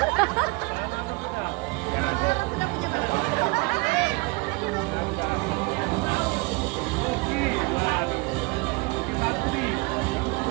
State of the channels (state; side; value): quieter; left; 26.7 dB